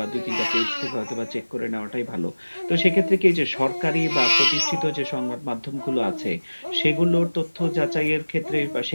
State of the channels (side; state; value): both; inverted; correlation -1.00